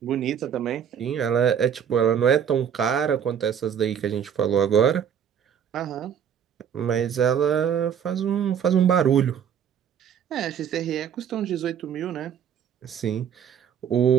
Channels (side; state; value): left; quieter; 8.4 dB